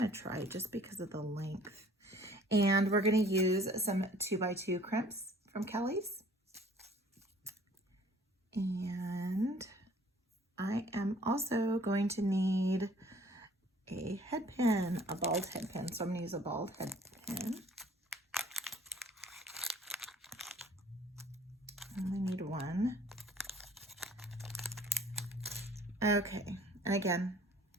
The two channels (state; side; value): normal; both; correlation 0.53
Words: to try just because of the length. And we're going to use some 2x2 crimps from Kellie's. And I am also going to need a head pin, a bald head pin. So I'm going to use a bald head pin. I only need one. Okay, and again,